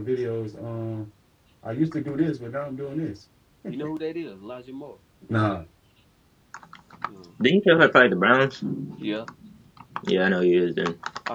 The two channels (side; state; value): both; identical; correlation 1.00